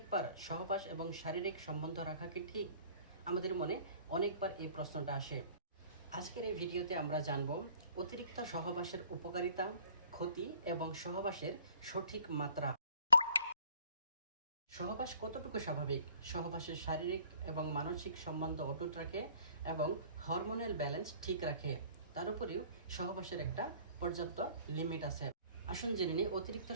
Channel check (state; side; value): inverted; both; correlation -0.52